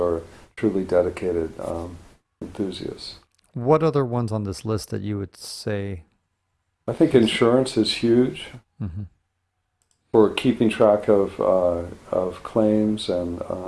truly dedicated enthusiasts. What other ones on this list that you would say I think is? insurance is huge Hmm. for keeping track of claims, and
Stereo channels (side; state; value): both; identical; correlation 1.00